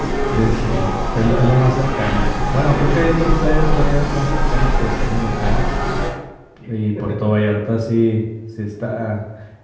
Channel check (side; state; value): both; identical; correlation 1.00